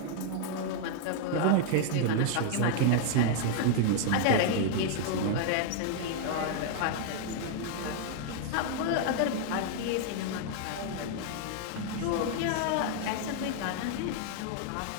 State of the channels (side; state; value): both; different; correlation 0.00